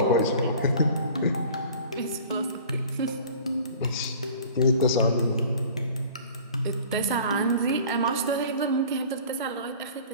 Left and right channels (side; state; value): both; inverted; correlation -0.46